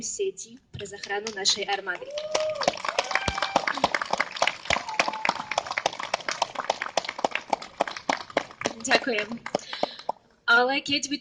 pre záchranu našej armády. Ďakujem. Ale keď vy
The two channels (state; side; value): identical; both; correlation 1.00